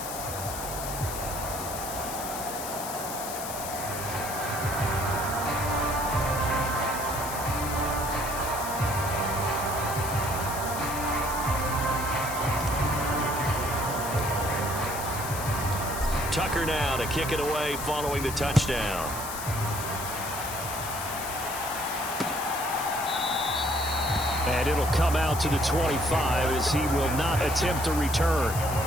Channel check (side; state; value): left; noise; hiss, 8 dB below the sound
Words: Tucker now to kick it away following the touchdown. And it'll come out to the 25 as he will not attempt a return.